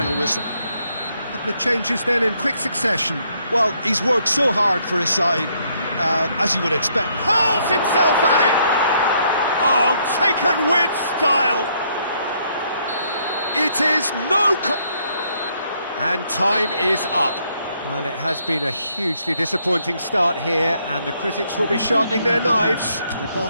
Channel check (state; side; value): inverted; both; correlation -0.71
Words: whistle. A couple of changes then in quick succession. Well, he's worked so hard for his side, as you would expect. Hurls himself at it! Oh, taken with style! It is no... And time is up. Well, it has been a hugely disappointing start here, and the critics will be sharpening their knives. The